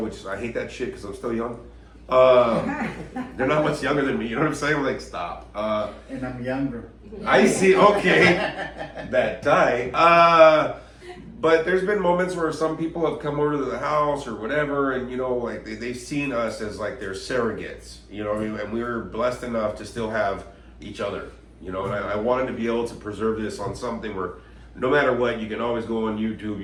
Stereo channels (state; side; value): identical; both; correlation 1.00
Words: I hate that shit because I'm still young. They're not much younger than me, you know what I'm saying? I'm like, stop. And I'm younger. I see, okay. That tie. But there's been moments where some people have come over to the house or whatever, and you know, like they've seen us as like their surrogates, you know what I mean? And we were blessed enough to still have each other, you know, and I wanted to be able to preserve this on something where no matter what, you can always go on YouTube,